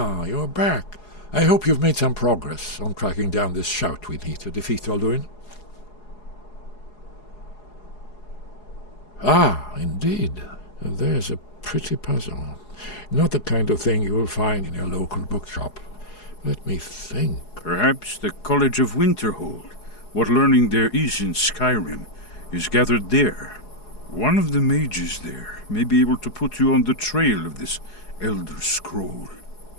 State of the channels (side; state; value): right; late; 4.8 ms